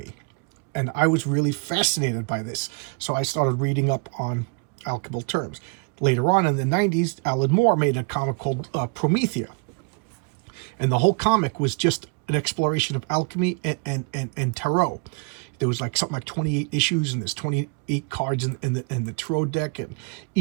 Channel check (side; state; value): left; quieter; 33.7 dB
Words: And I was really fascinated by this. So I started reading up on alchemical terms. Later on in the 90s, Alan Moore made a comic called Promethea. And the whole comic was just an exploration of alchemy and tarot. There was like something like 28 issues, and there's 28 cards in the tarot deck, and